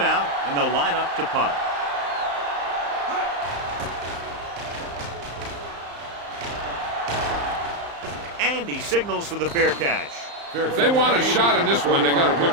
out, and they'll line up to punt. And he signals for the fair catch. If they want a shot in this one, they got to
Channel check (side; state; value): left; late; 35 ms